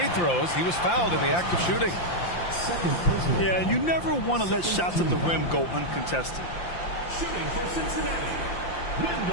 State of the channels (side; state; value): right; late; 5.8 ms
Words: throws. He was fouled in the act of shooting. Yeah, you never want to let shots at the rim go uncontested. Shooting for Cincinnati,